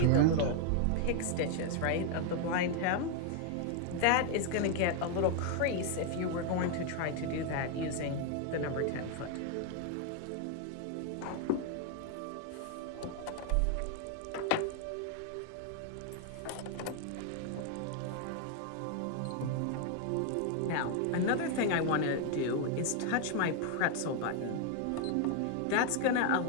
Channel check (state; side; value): different; both; correlation 0.00